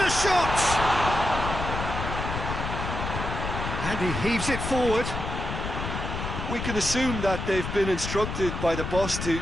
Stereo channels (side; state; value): left; noise; rumble, 4 dB below the sound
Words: shot! And he heaves it forward. We can assume that they've been instructed by the boss to